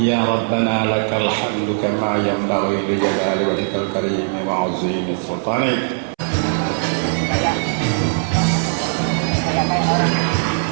Rabbana lakal hamdu kama yanbaghi li jalali wajhikal karim wa 'azimi sultanik.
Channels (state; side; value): silent; left; 66 dB below the other